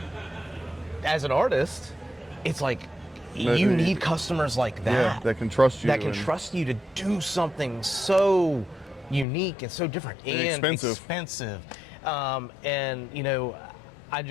as an artist, it's like, you need customers like that. That can trust you. That can trust you to do something so unique and so different and expensive. And, you know,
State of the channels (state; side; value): drops out; right; at 9.2 s